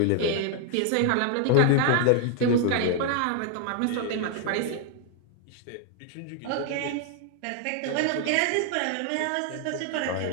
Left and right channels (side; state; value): both; different; correlation 0.00